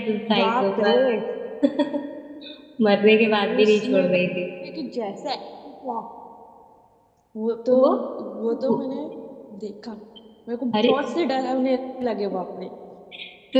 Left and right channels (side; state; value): both; identical; correlation 1.00